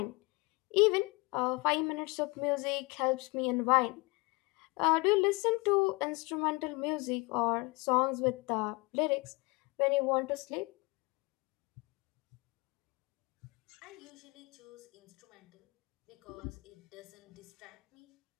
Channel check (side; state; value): right; quieter; 26.7 dB